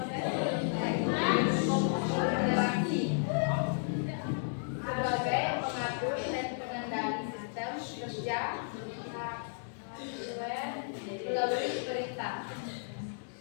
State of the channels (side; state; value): right; silent; digital silence